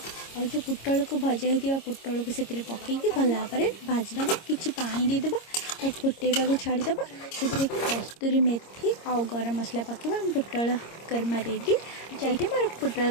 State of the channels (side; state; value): right; late; 26 ms